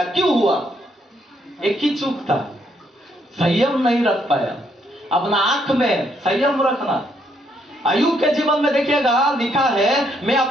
क्यों हुआ? एक ही चूक था, संयम नहीं रख पाया। अपना आंख में संयम रखना। अय्यूब के जीवन में देखिएगा, लिखा है मैं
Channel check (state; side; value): normal; both; correlation 0.72